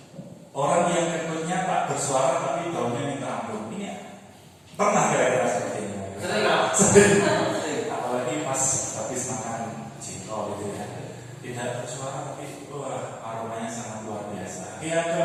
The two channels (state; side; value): identical; both; correlation 1.00